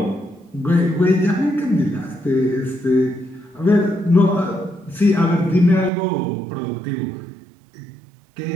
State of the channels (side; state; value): left; drops out; at 5.9 s